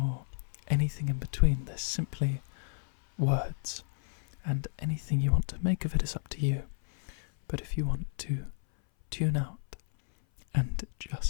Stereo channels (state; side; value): silent; right; 56 dB below the other